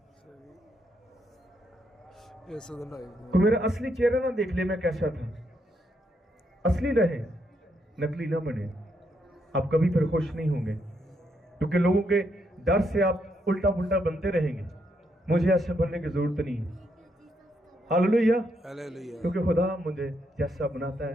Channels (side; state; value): both; normal; correlation 0.77